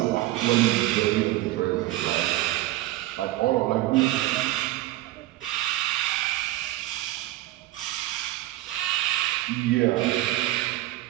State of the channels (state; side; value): quieter; left; 16.2 dB